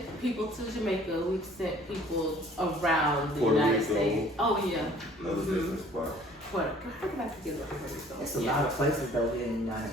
people to Jamaica. We've sent people around the Puerto United Rico. States. Oh, yeah. Another business spot. How did I forget about Puerto Rico? There's a lot of places though here in the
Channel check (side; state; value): both; normal; correlation 0.54